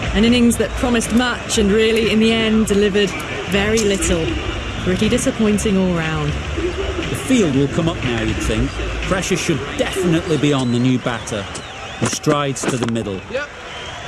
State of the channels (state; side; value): identical; both; correlation 1.00